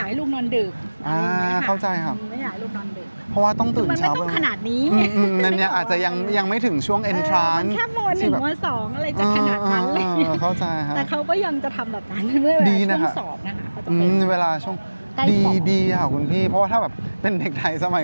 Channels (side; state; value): both; inverted; correlation -1.00